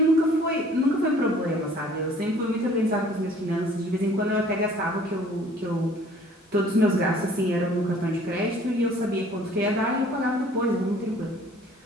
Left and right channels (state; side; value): normal; both; correlation 0.54